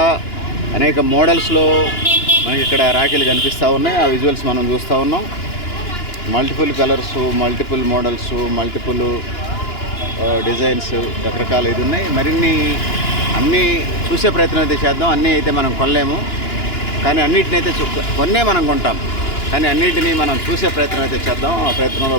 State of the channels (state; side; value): late; right; 2.9 ms